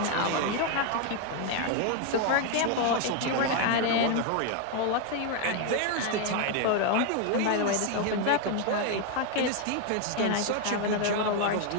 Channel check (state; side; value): different; both; correlation 0.01